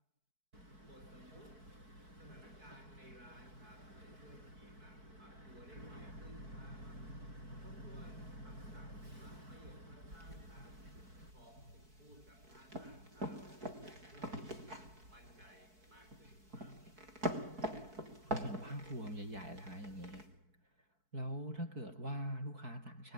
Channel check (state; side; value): late; left; 4.6 ms